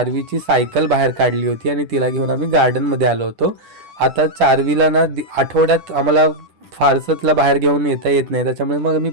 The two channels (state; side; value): late; left; 10 ms